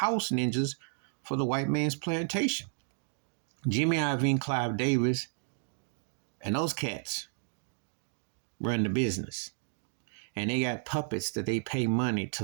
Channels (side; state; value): left; silent; 56 dB below the other